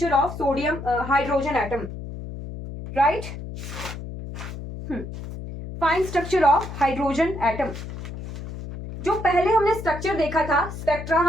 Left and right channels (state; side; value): noise; left; hum, 9 dB below the sound